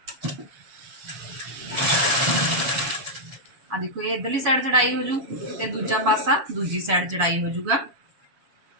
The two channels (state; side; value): late; left; 7.1 ms